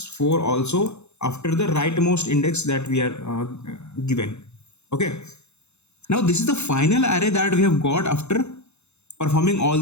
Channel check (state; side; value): late; right; 0.81 ms